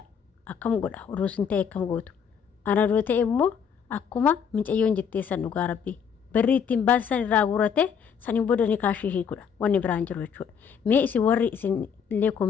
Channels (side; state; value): right; quieter; 7.2 dB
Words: akkam godha uruusin ta'e akkam gootu ana doo ta'e immoo akkuma mucayyoon jetteessan dhugaa rabbii barri ittiin baasan irraa guurate saniin booda ni kaashii hiikudha wanni biraan jiru jechuudha mee isin warri isin illee